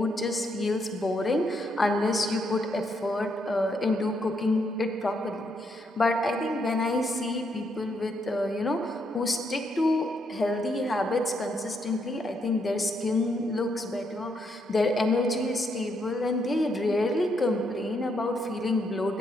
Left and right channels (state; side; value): normal; both; correlation 0.76